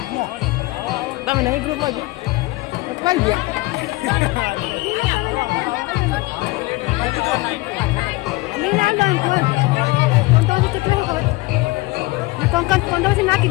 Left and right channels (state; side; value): quieter; right; 21.8 dB